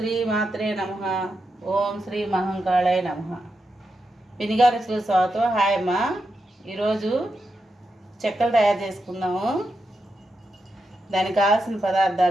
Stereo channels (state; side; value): normal; both; correlation 0.86